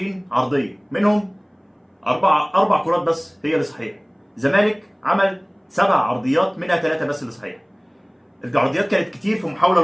عرضيه، منهم اربع كرات بس هي اللي صحيحه. الزمالك عمل 7 عرضيات، منها 3 بس اللي صحيحه. العرضيات كانت كتير في محاوله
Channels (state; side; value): identical; both; correlation 1.00